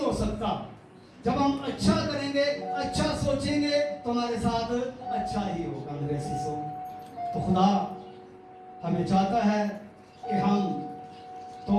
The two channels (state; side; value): identical; both; correlation 1.00